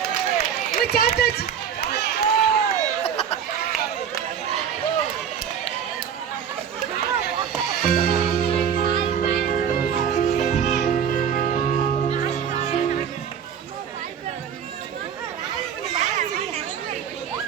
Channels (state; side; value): quieter; left; 8.1 dB